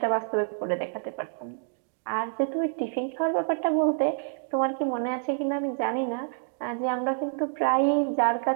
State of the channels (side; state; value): left; silent; digital silence